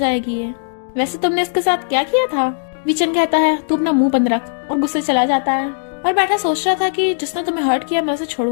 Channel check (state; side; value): silent; right; digital silence